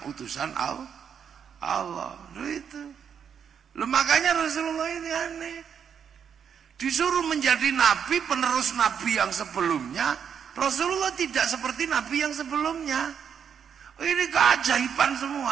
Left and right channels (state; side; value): quieter; left; 7.6 dB